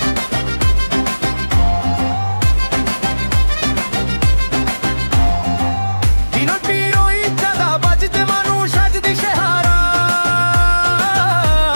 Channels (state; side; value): inverted; both; correlation -1.00